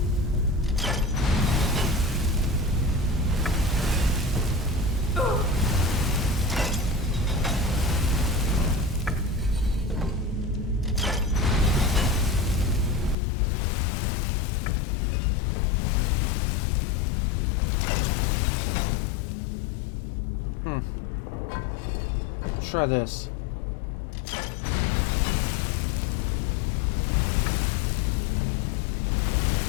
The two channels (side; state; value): right; drops out; at 13.2 s